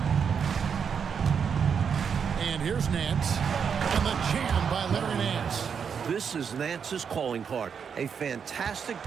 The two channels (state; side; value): quieter; left; 6.8 dB